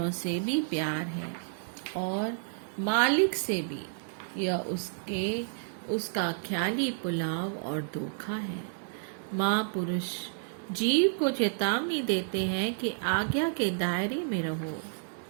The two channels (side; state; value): left; silent; digital silence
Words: से भी प्यार है और मालिक से भी, यह उसका ख्याली पुलाव और धोखा है। महापुरुष जीव को चेतावनी देते हैं कि आज्ञा के दायरे में रहो।